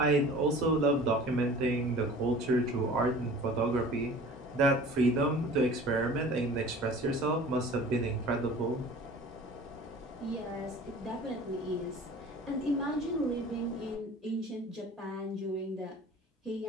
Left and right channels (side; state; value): both; normal; correlation 0.44